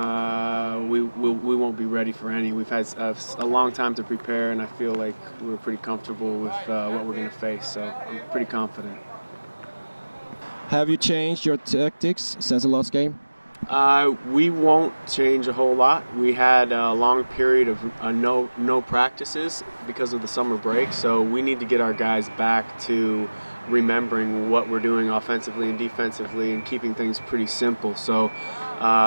we won't be ready for any. We've had a long time to prepare, and I feel like we're pretty comfortable with what we're going to face, so I'm pretty confident. Have you changed your tactics since the last game? We won't change a whole lot. We had a long period of no practices because of the summer break, so we need to get our guys back to remembering what we're doing offensively and defensively and keeping things pretty simple. So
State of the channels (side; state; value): both; inverted; correlation -1.00